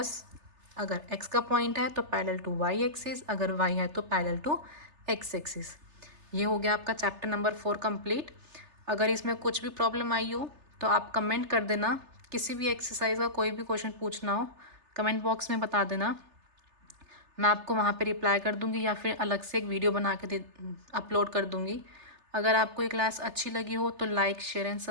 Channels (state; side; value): late; left; 3.3 ms